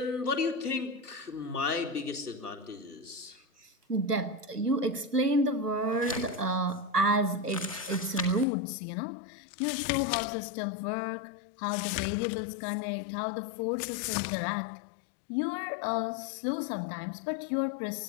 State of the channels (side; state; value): right; drops out; at 8.5 s